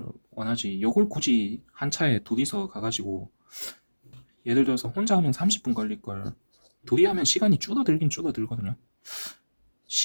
원하지, 요걸 굳이 한 차에 둘이서 가가지고, 예를 들어서 혼자 하면 30분 걸릴 걸 둘이 하면 시간이 줄어들긴 줄어들거든요.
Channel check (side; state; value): both; inverted; correlation -1.00